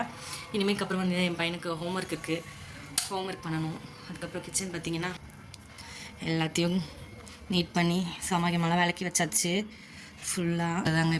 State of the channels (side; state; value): both; identical; correlation 1.00